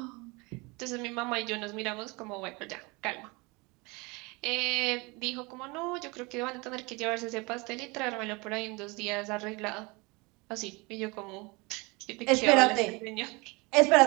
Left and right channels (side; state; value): left; quieter; 26.5 dB